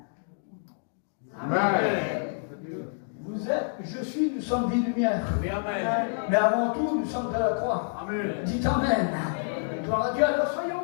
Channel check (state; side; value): silent; right; digital silence